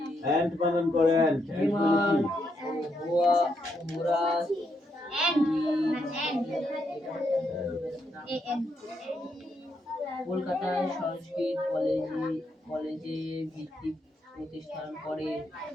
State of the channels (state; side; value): normal; both; correlation 0.79